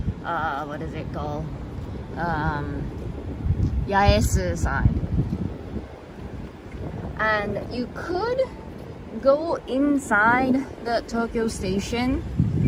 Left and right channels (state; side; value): identical; both; correlation 1.00